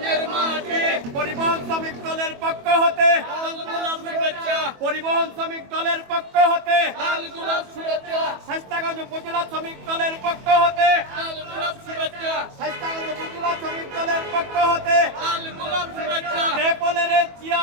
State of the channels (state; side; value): late; left; 22 ms